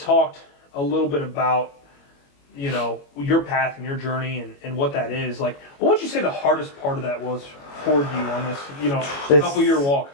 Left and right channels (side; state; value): right; late; 21 ms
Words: a little bit about, you know, your path and your journey and what that is. Like, what would you say the hardest part of that was for you on this, you know, couple-year walk?